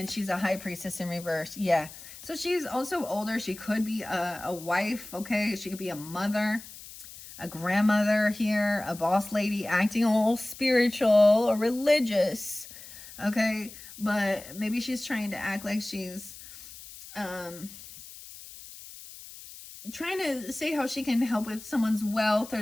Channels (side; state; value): left; noise; hiss, 16 dB below the sound